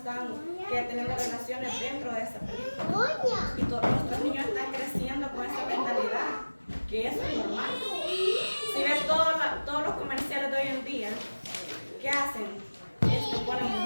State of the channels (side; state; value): both; inverted; correlation -1.00